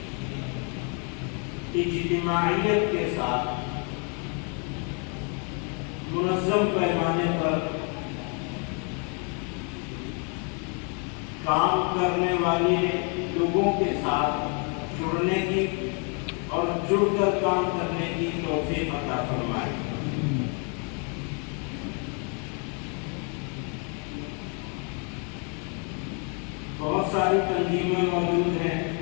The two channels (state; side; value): quieter; right; 37.6 dB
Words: اجتماعیت کے ساتھ منظم پیمانے پر کام کرنے والے لوگوں کے ساتھ جڑنے کی اور جڑ کر کام کرنے کی توفیق عطا فرمائے۔ بہت ساری تنظیمیں موجود ہیں،